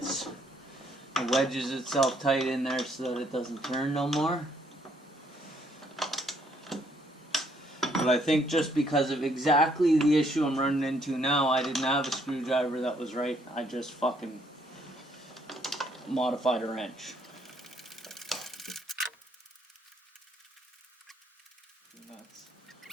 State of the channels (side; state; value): both; normal; correlation 0.68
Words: It wedges itself tight in there so that it doesn't turn no more. But I think just because of exactly the issue I'm running into now, I didn't have a screwdriver that was right. I just fucking modified a wrench.